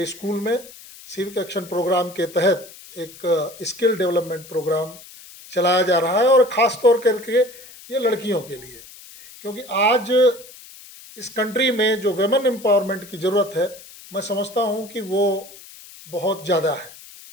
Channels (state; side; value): noise; left; hiss, 19 dB below the sound